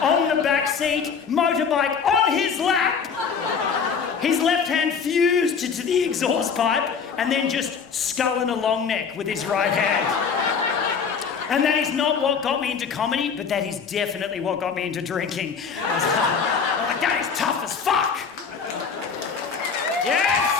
on the back seat, motorbike on his lap. His left hand fused to the exhaust pipe and then just sculling a long neck with his right hand. And that is not what got me into comedy, but that is definitely what got me into drinking. I'm like, that is tough as fuck. Yes!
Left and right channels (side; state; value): right; quieter; 6.1 dB